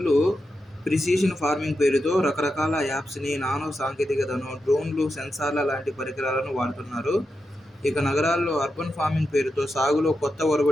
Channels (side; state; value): both; normal; correlation 0.88